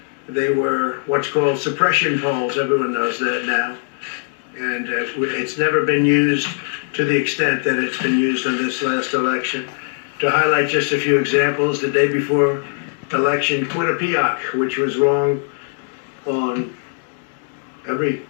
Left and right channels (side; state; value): right; silent; digital silence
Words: They were what's called suppression polls. Everyone knows that now. And it's never been used to the extent that it's been used in this last election. To highlight just a few examples, the day before election, Quinnipiac, which was wrong on every